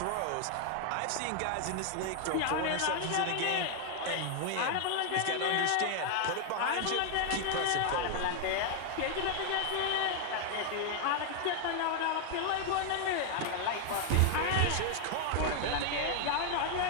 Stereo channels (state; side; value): different; both; correlation 0.00